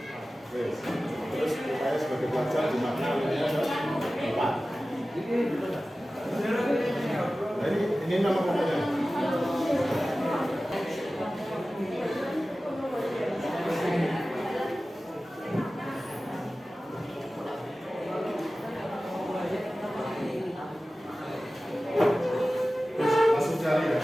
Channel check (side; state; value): both; normal; correlation 0.96